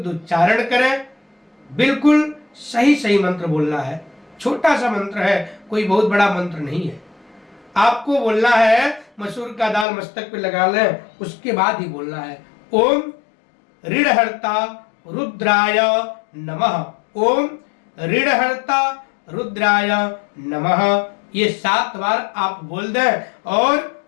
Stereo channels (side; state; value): right; drops out; at 9.9 s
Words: उच्चारण करें। बिल्कुल सही सही मंत्र बोलना है। छोटा सा मंत्र है, कोई बहुत बड़ा मंत्र नहीं है। आपको बोलना है, मसूर का दाल मस्तक पे लगा लें, उसके बाद ही बोलना है, ओम ऋणहर्ता रुद्राय नमः। ओम ऋणहर्ता रुद्राय नमः। ये 7 बार आप बोल दें और